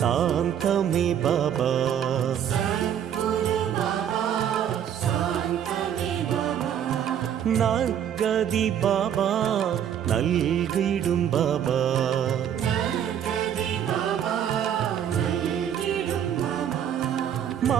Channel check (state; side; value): quieter; left; 9.4 dB